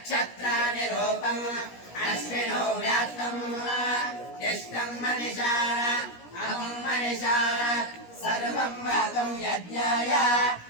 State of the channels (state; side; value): late; right; 17 ms